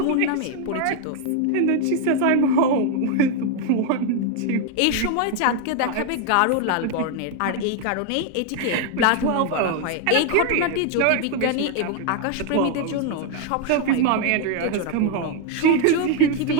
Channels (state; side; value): different; both; correlation 0.01